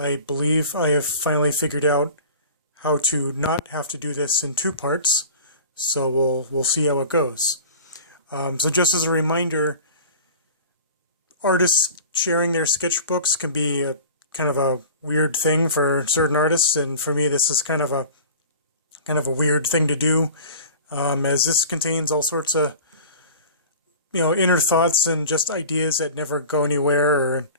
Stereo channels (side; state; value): both; inverted; correlation -0.40